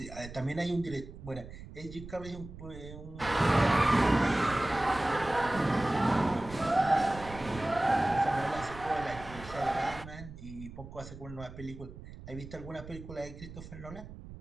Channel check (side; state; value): right; noise; rumble, 14 dB below the sound